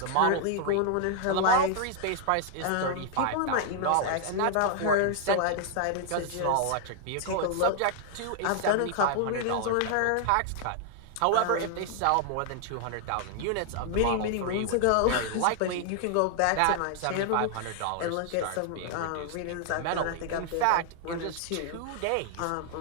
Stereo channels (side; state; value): both; different; correlation 0.00